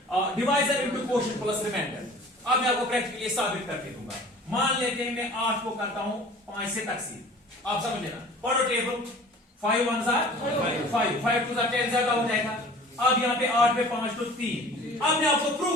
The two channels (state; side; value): normal; both; correlation 0.45